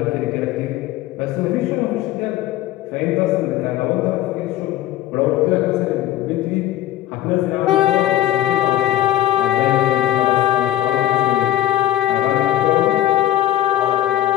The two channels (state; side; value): quieter; right; 13.8 dB